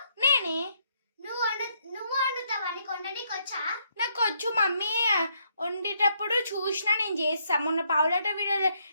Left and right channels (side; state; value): both; inverted; correlation -0.73